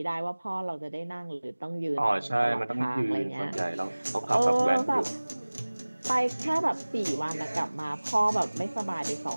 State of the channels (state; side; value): inverted; both; correlation -1.00